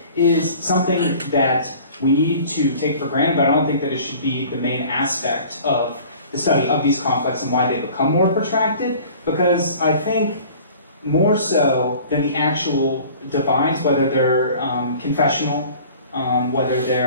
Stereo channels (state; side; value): inverted; both; correlation -0.47